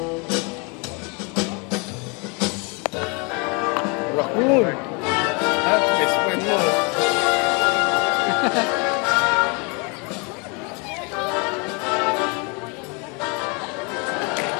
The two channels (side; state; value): right; quieter; 31.6 dB